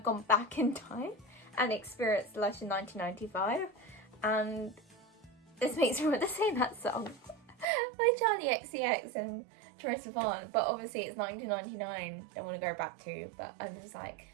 gone back in time and experienced Lush in 1995, and this makes me want to sing that song by Charlie XCX and Troye Sivan, but obviously it's 1999, don't want to go back to, but I'm just like,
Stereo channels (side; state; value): left; drops out; at 7.7 s